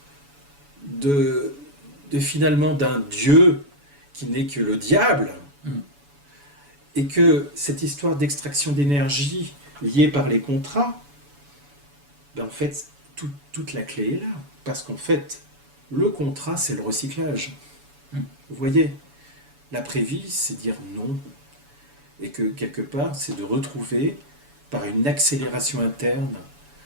de finalement d'un Dieu qui n'est que le diable. Et que cette histoire d'extraction d'énergie liée par les contrats, ben en fait, toute la clé est là. Parce qu'en fait, le contrat, c'est le recyclage. Vous voyez, l'après-vie, c'est dire non. Et que quelque part, c'est de retrouver, par une accélération interne,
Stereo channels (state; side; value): late; left; 7.0 ms